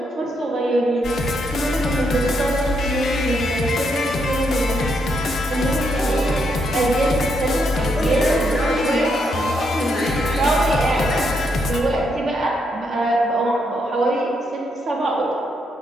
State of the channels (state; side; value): normal; both; correlation 0.78